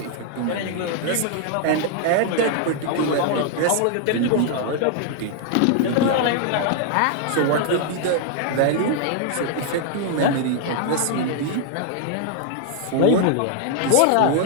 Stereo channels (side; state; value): both; different; correlation 0.00